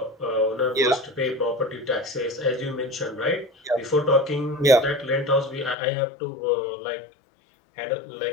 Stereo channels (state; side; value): drops out; right; at 5.8 s